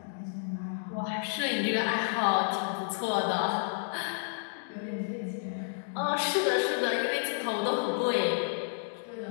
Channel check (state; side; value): silent; right; digital silence